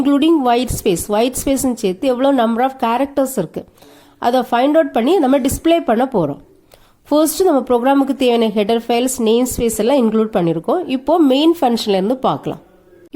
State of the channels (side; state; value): both; identical; correlation 1.00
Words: ஒயிட் ஸ்பேஸ்ன்னு சேர்த்து எவ்வளோ நம்பர் ஆஃப் கேரக்டர்ஸ் இருக்கு, அதை ஃபைண்ட் அவுட் பண்ணி நம்ம டிஸ்பிளே பண்ண போகிறோம். ஃபர்ஸ்ட் நம்ம ப்ரோக்ராமுக்கு தேவையான ஹெடர் ஃபைல்ஸ், நேம் ஸ்பேஸ் எல்லாம் இன்க்ளூட் பண்ணியிருக்கோம். இப்போ மெயின் ஃபங்க்ஷன்ல இருந்து பார்க்கலாம்.